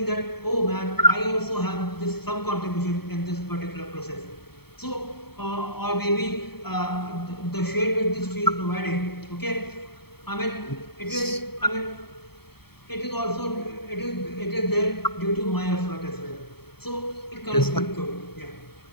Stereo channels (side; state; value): right; late; 0.96 ms